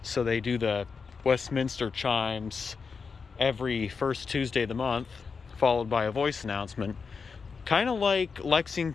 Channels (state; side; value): quieter; right; 5.2 dB